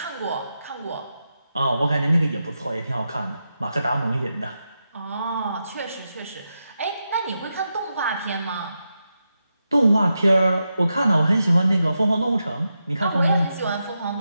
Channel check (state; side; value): inverted; both; correlation -0.88